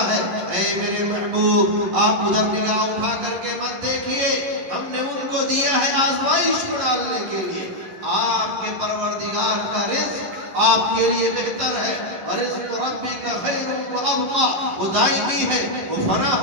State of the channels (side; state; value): left; late; 10 ms